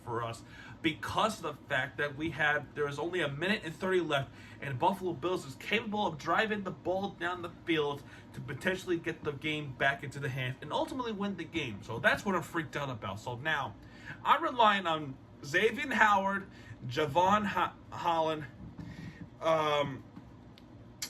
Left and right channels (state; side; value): identical; both; correlation 1.00